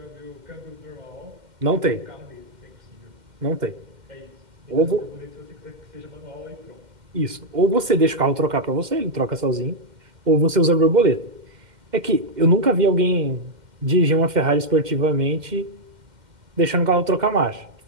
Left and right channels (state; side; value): late; left; 2.1 ms